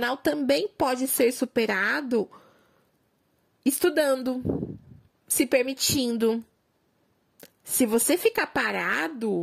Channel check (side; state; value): both; identical; correlation 1.00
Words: também pode ser superado estudando, se permitindo. Se você ficar